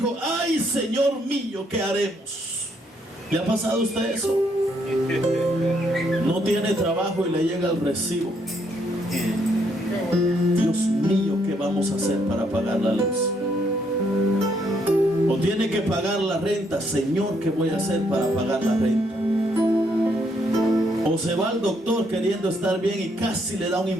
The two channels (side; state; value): both; normal; correlation 0.72